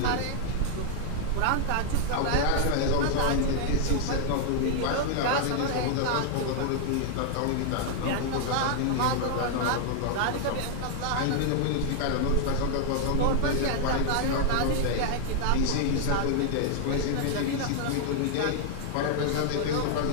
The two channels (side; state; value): both; different; correlation -0.01